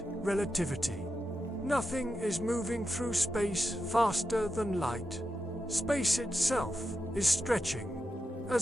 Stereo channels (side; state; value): both; normal; correlation 0.88